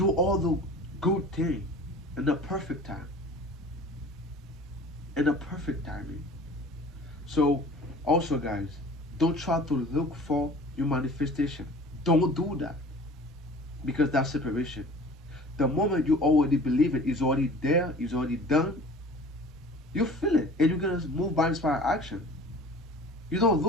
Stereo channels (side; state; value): both; normal; correlation 0.44